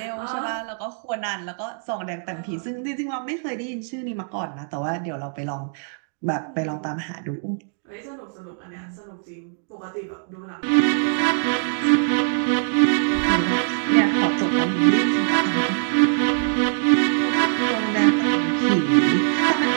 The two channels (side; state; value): left; silent; digital silence